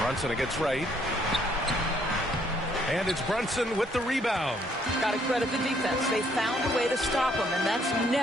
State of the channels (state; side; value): normal; both; correlation 0.67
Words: against Wright. And it's Brunson with the rebound. Got to credit the defense. They found a way to stop him, and that's